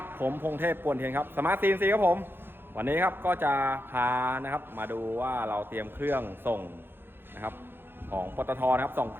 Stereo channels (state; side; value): late; left; 0.10 ms